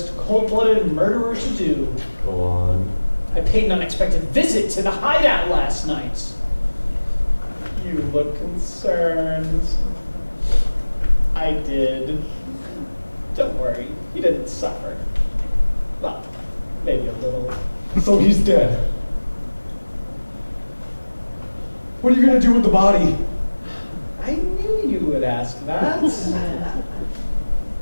cold-blooded murderer to do? Go on. I paid an unexpected visit to the hideout last night. You look concerned. I did. Don't worry, he didn't suffer. Well, maybe a little. So he's dead. What are you going to do with the body? I knew you would ask that.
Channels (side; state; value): both; inverted; correlation -1.00